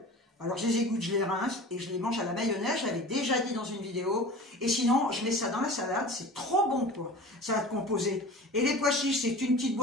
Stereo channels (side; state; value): both; normal; correlation 0.38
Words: alors je les égoutte, je les rince et je les mange à la mayonnaise. Je l'avais déjà dit dans une vidéo. Et sinon, je mets ça dans la salade. C'est trop bon, quoi. Salade composée. Et les pois chiches, c'est une petite